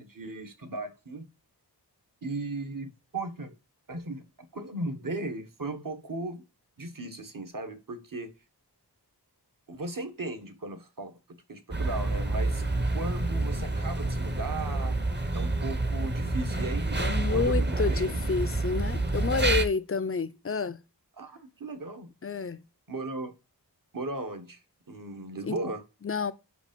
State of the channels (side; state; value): both; normal; correlation 0.47